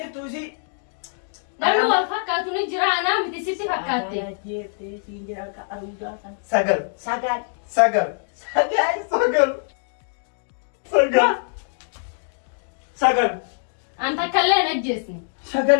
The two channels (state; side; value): silent; right; digital silence